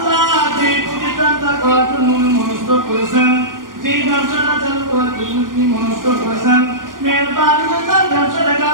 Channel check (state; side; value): late; left; 0.90 ms